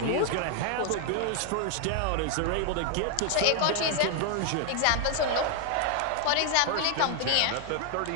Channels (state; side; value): different; both; correlation 0.00